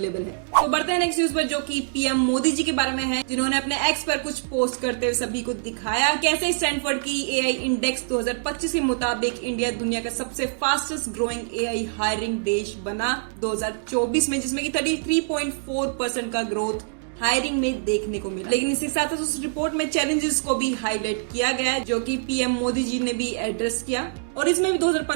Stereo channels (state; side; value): silent; left; digital silence